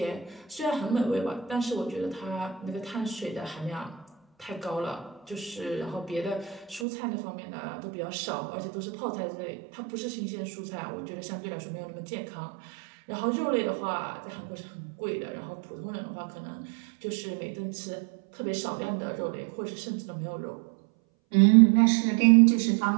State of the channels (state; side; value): drops out; left; at 6.9 s